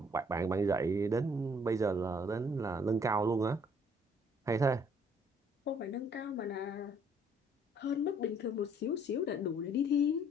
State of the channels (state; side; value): normal; both; correlation 0.62